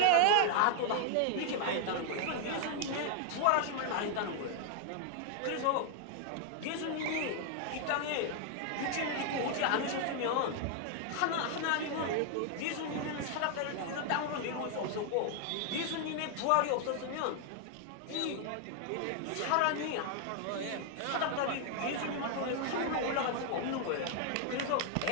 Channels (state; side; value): different; both; correlation 0.00